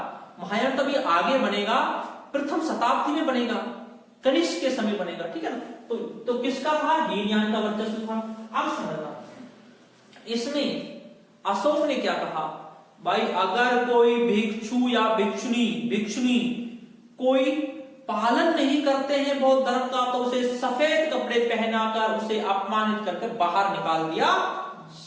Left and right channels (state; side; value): identical; both; correlation 1.00